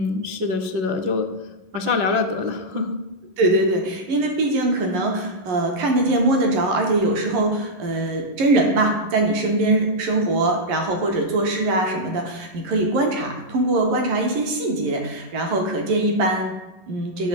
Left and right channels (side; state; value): left; late; 11 ms